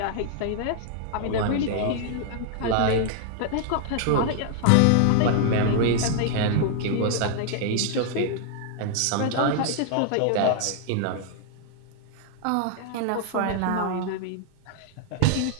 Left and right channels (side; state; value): both; different; correlation -0.01